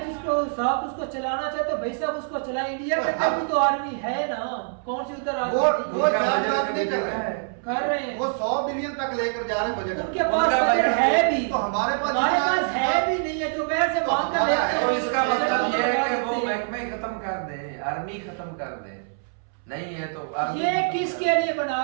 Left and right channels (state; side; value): silent; left; 62 dB below the other